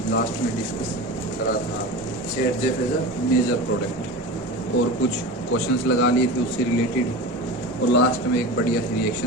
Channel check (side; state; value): both; normal; correlation 0.29